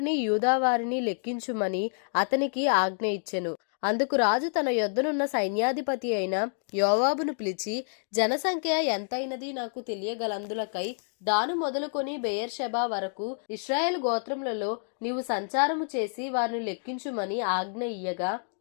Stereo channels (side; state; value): right; silent; digital silence